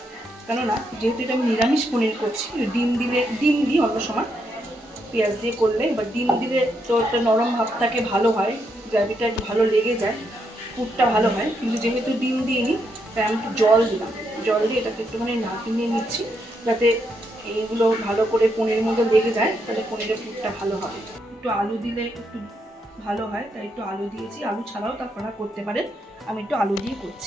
কেননা যেহেতু এটা আমি নিরামিষ পনির করছি। ডিম দিই অন্য সময় পেঁয়াজ দিয়ে করলে, এবার ডিম দিলে তো একটা নরম ভাবটাকে ভালো হয়, গ্রেভিটা একটু ভালো লেগে যায়, পুরটা ভালো হয়। কিন্তু যেহেতু ডিম দিইনি তাই আমি একটু জল দিলাম। জল দিয়ে এটাকে একটুখানি নাড়িয়ে নিচ্ছি যাতে এইগুলো ভালো করে পনিরের মধ্যে লেগে যায়, তাহলে পনিরের পুরটা ভালো হবে। একটু আলু দিলে একটু ভালো হয়, তাই একটু আলু দিয়েছি। আলু ছাড়াও আপনারা করতে পারেন, আমি একটু আলু দিয়ে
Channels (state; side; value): normal; both; correlation 0.78